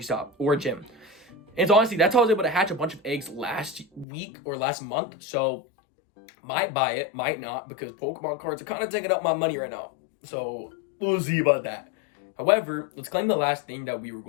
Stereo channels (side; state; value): right; drops out; at 4.0 s